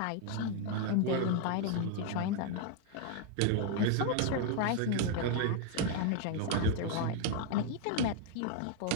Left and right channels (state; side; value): different; both; correlation 0.00